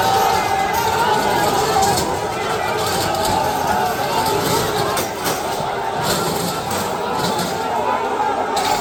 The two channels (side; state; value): both; identical; correlation 1.00